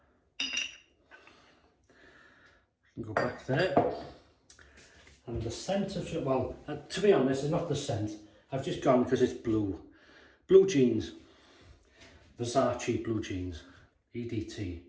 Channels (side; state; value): both; identical; correlation 1.00